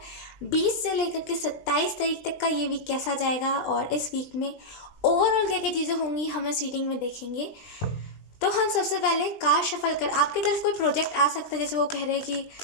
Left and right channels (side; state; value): right; late; 20 ms